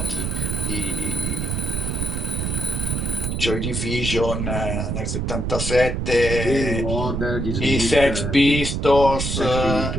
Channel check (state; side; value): noise; right; rumble, 1 dB below the sound